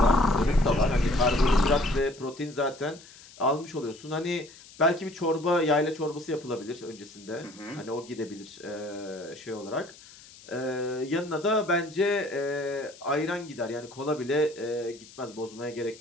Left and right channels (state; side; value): noise; left; hiss, 21 dB below the sound